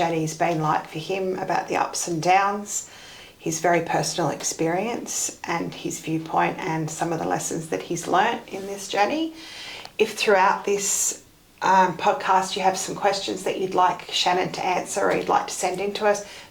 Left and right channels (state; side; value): identical; both; correlation 1.00